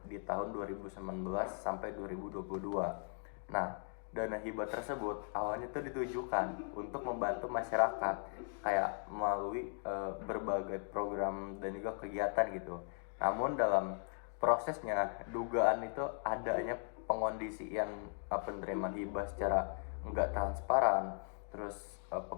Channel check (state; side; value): silent; right; 52 dB below the other